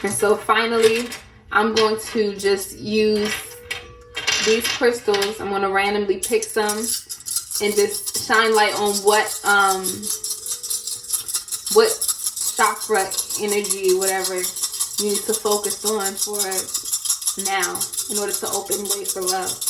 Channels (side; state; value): both; identical; correlation 1.00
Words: so finally, I'm going to just use these crystals. I'm going to randomly pick some and just shine light on what chakra energy, whatever you need to focus on for now in order to open way for love.